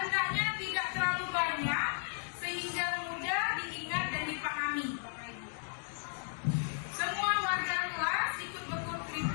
tidak terlalu banyak sehingga mudah diingat dan dipahami. Semua warga kelas ikut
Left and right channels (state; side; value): silent; right; 54 dB below the other